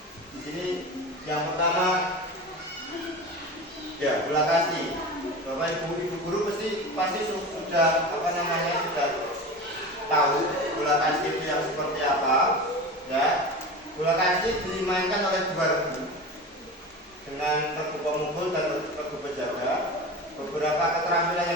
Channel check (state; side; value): normal; both; correlation 0.30